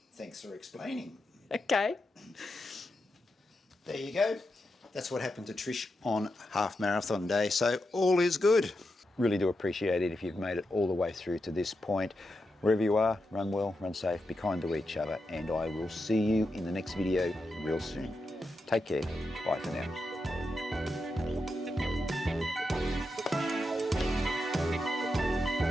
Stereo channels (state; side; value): normal; both; correlation 0.87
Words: Thanks for explaining. Okay. There you go. That's what happened to Trish on half marathon day. So all is good. Really do appreciate it if you've made it all the way through to this point. Wherever you are, run well, run safe, be kind to each other, and I will see you in the next video real soon. Take care. Bye for now.